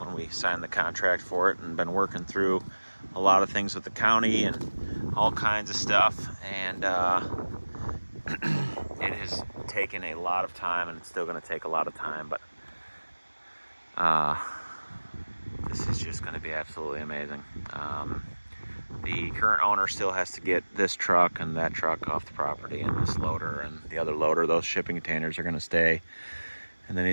we signed the contract for it, and been working through a lot of things with the county and all kinds of stuff. And it has taken a lot of time, and it's still going to take a lot of time, but this is just going to be absolutely amazing. The current owner still has to get this truck and that truck off the property, and this loader and the other loader. Those shipping containers are going to stay. And then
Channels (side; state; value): both; inverted; correlation -1.00